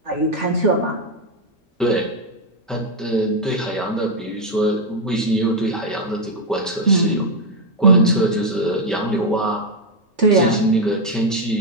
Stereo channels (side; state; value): both; normal; correlation 0.03